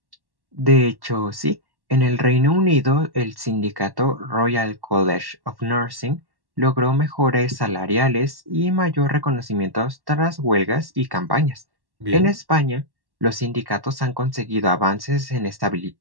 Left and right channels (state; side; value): late; left; 1.1 ms